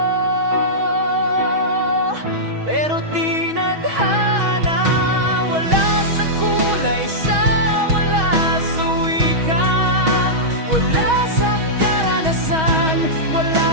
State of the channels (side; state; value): left; late; 6.3 ms